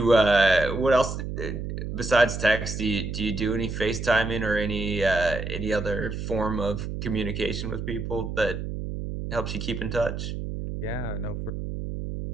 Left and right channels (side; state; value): right; noise; hum, 5 dB below the sound